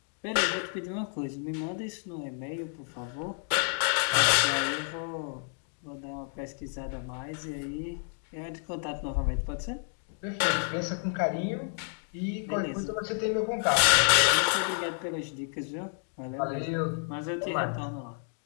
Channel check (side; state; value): right; silent; 57 dB below the other